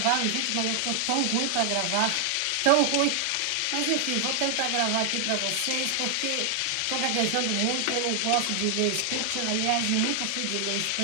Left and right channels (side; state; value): both; different; correlation 0.00